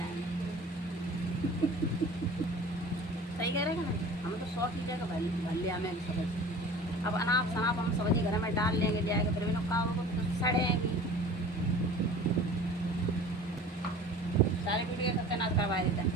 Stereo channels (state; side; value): normal; both; correlation 0.42